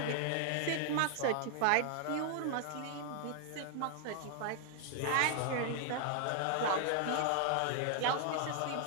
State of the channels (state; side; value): different; both; correlation 0.00